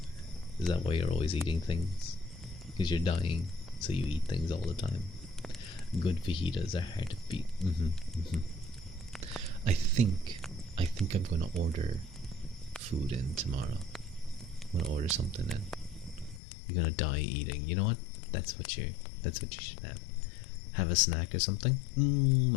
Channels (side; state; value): right; drops out; at 16.4 s